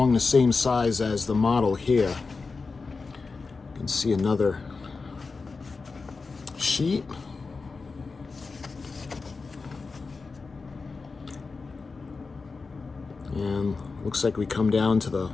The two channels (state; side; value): quieter; right; 4.3 dB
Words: the same size as the model here. You can see another sheet. And looks like we come down to the